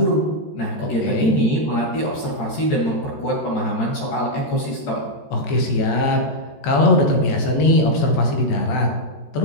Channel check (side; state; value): right; late; 13 ms